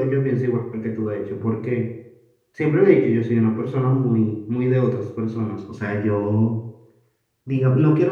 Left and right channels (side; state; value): both; identical; correlation 1.00